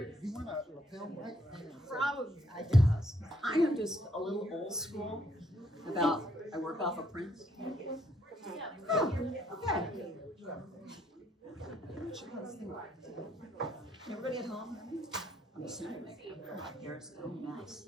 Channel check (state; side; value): normal; both; correlation 0.70